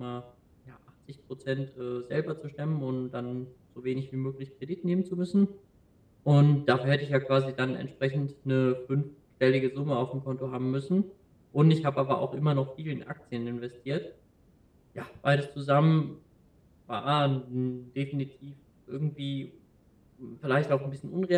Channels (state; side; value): identical; both; correlation 1.00